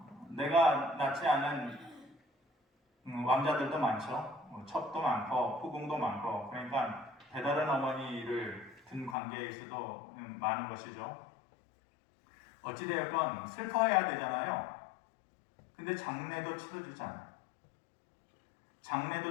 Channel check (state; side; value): drops out; right; at 9.2 s